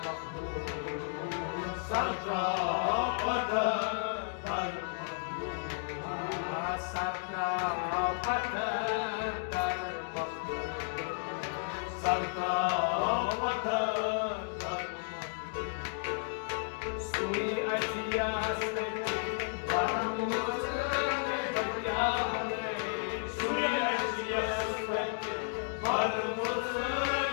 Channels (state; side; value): silent; right; digital silence